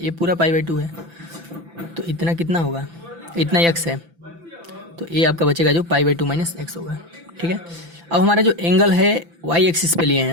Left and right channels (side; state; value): left; late; 5.9 ms